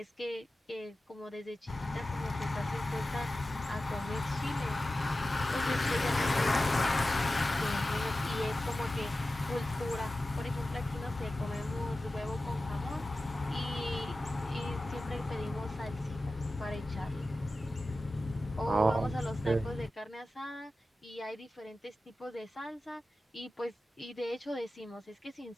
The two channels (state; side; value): normal; both; correlation 0.94